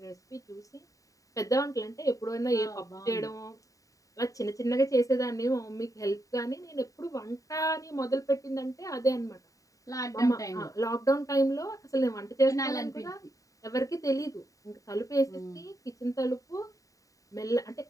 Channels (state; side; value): late; right; 0.16 ms